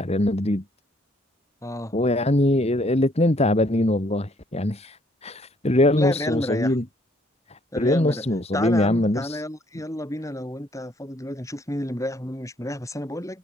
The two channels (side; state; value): both; normal; correlation 0.65